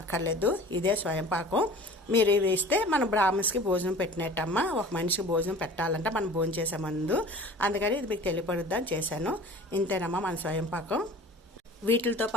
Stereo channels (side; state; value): both; normal; correlation 0.43